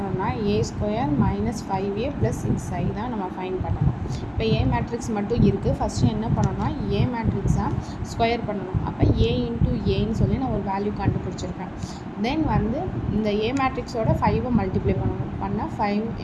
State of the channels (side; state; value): both; identical; correlation 1.00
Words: A² - 5A + 6I தான் நம்ம ஃபைன் பண்ணணும். இப்போ A மேட்ரிக்ஸ் மட்டும் இருக்குது. ஃபஸ்ட்டு என்ன பண்ணணும்னா A மேட்ரிக்ஸாக ஸ்கொயர் பண்ணணும். அப்போ A × Aன்னு சொல்லி நான் ஒரு வேல்யூ கண்டுபிடிச்சிருக்கேன். தென் வந்து இந்த A மேட்ரிக்ஸோட 5 மல்டிப்ளை பண்ணால் 5